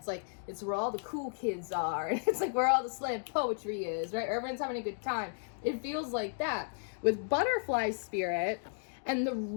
like, it's where all the cool kids are. It's like where all the slam poetry is, right? Everyone's having a good time. It feels like that. With butterfly spirit and the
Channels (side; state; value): right; silent; digital silence